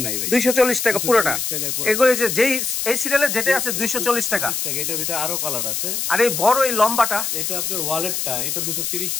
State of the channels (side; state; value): left; noise; hiss, 2 dB below the sound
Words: নাই ভাই। 240 টাকা পুরোটা। 240 টাকায় পুরো। এগুলো যে যেই এই সিরিয়ালে যেটা আছে 240 টাকা। 240 টাকা। এটার ভিতরে আরো কালার আছে। আর এই বড় এই লম্বাটা, এটা আপনার ওয়ালেটটা, এটা 230